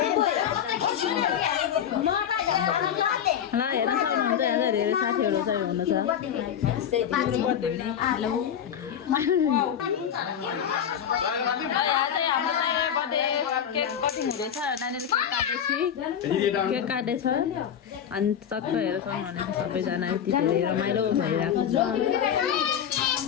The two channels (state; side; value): quieter; right; 8.9 dB